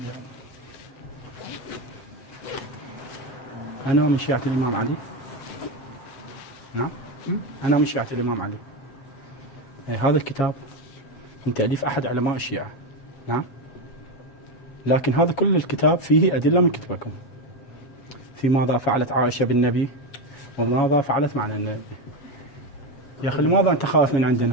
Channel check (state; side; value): late; right; 7.3 ms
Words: أنا من شيعة الإمام علي. نعم. أنا من شيعة الإمام علي. هذا الكتاب من تأليف أحد علماء الشيعة. نعم. لكن هذا كل الكتاب فيه أدلة من كتبكم في ماذا فعلت عائشة بالنبي وماذا فعلت معنا النبي. يا أخي لماذا أنت خايف من